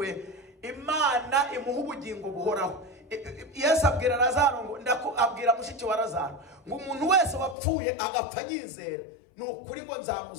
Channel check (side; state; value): right; drops out; at 7.6 s